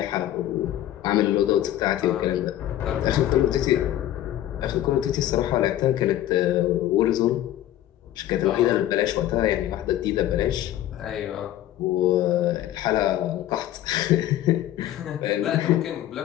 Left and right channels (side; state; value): right; quieter; 13.0 dB